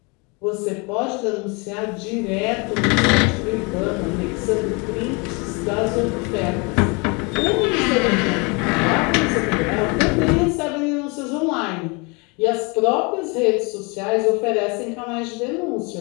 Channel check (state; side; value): quieter; right; 29.9 dB